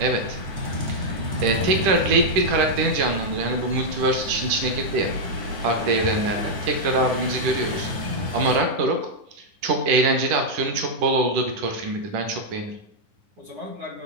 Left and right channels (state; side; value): late; left; 10 ms